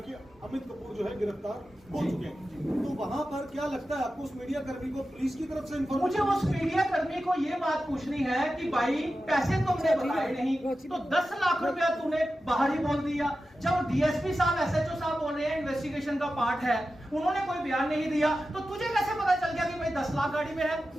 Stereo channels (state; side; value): normal; both; correlation 0.93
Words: अमित कपूर जो है गिरफ्तार हो चुके हैं। तो वहां पर क्या लगता है आपको, उस मीडिया कर्मी को पुलिस की तरफ से मुझे उस मीडिया कर्मी को ये बात पूछनी है कि भाई पैसे तुमने बताए नहीं तो 10 लाख रुपया तूने बाहर ही बोल दिया। जब डीएसपी साहब, एसएचओ साहब बोल रहे हैं इन्वेस्टिगेशन का पार्ट है, उन्होंने कोई बयान नहीं दिया, तो तुझे कैसे पता चल गया कि भाई 10 लाख गाड़ी में है?